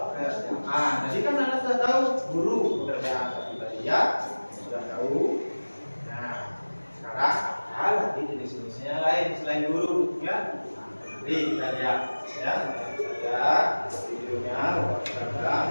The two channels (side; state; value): both; inverted; correlation -1.00